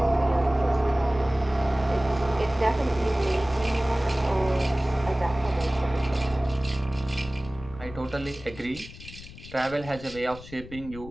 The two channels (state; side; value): noise; left; rumble, 15 dB below the sound